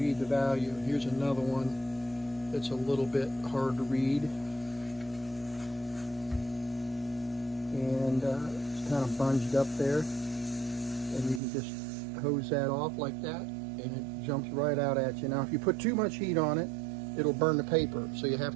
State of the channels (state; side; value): drops out; left; at 11.4 s